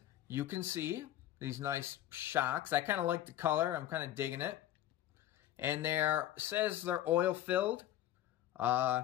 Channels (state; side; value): quieter; right; 13.0 dB